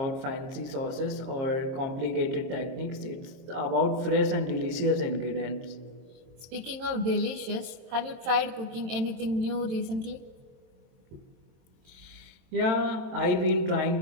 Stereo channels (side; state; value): left; late; 23 ms